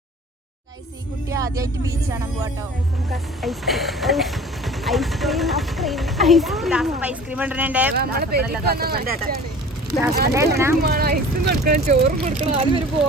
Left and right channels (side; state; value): both; normal; correlation 0.43